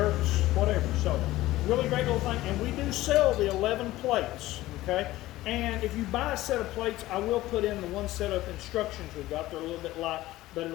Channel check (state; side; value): quieter; right; 16.6 dB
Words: whatever. So really great little thing. And we do sell the 11 plates, okay? And if you buy a set of plates, I will put in the one set of instructions we've got. They're a little bit light, but